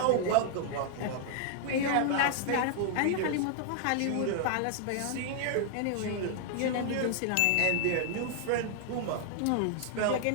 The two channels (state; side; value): different; both; correlation -0.01